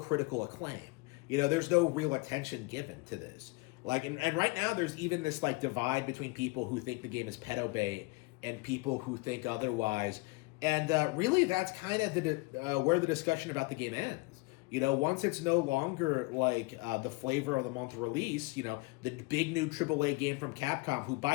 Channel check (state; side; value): quieter; right; 25.3 dB